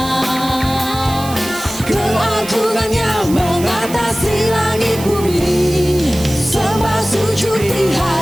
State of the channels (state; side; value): noise; right; hiss, 13 dB below the sound